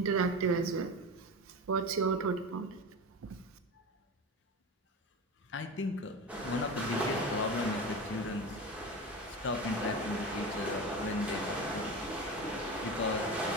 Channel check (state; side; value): normal; both; correlation 0.26